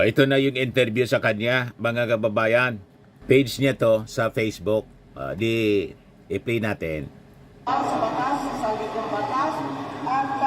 na yung interview sa kanya, mga kababayan. Page niya to sa Facebook. I-play natin. Sa batas, sa likong batas, at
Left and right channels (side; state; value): both; identical; correlation 1.00